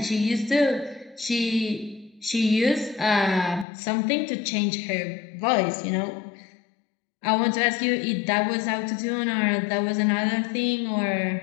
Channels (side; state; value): right; drops out; at 3.7 s